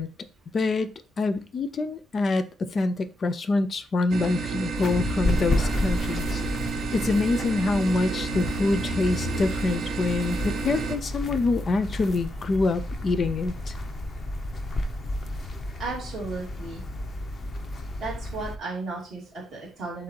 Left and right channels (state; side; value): normal; both; correlation 0.83